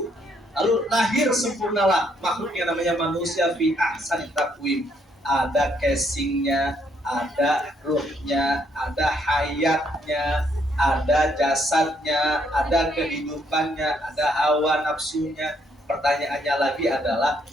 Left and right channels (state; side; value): normal; both; correlation 0.71